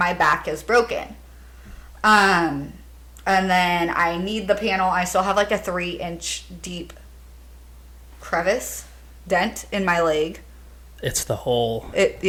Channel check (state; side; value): identical; both; correlation 1.00